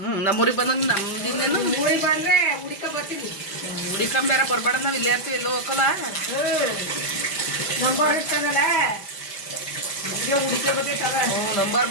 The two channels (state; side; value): late; right; 5.1 ms